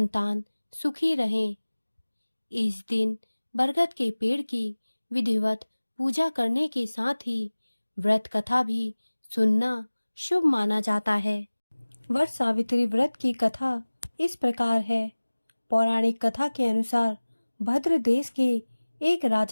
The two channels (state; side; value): inverted; both; correlation -1.00